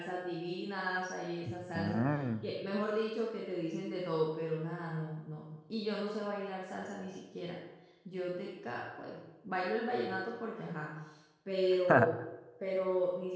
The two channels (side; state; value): both; identical; correlation 1.00